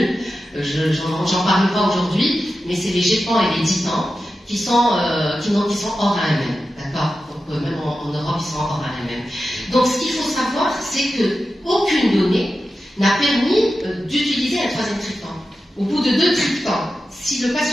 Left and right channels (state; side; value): normal; both; correlation 0.92